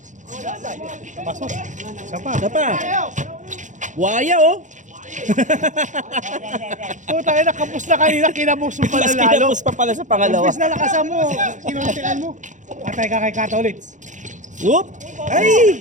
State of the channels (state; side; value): late; left; 0.36 ms